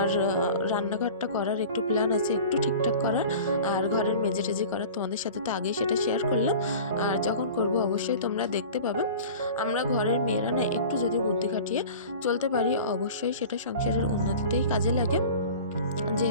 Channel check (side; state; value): both; inverted; correlation -0.39